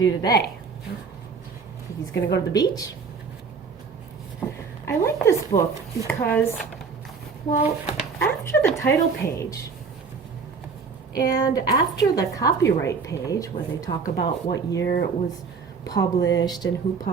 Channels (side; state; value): left; quieter; 5.2 dB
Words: today? Think he's gonna go to the beach? I like this book because, well, after the title page and after the copyright page where they talk about what year it was published and who